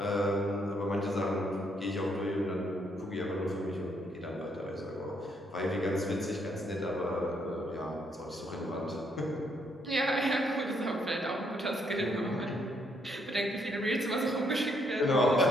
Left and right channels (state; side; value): normal; both; correlation 0.72